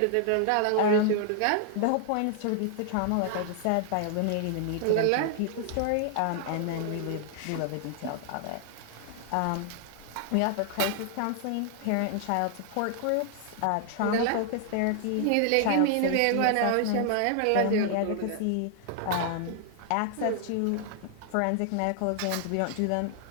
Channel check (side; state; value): both; different; correlation 0.00